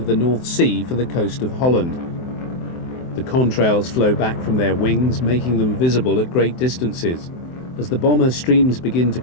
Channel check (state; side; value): late; right; 23 ms